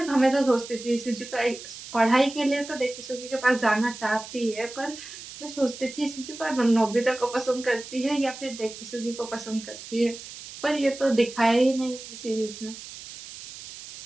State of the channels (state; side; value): noise; right; hiss, 13 dB below the sound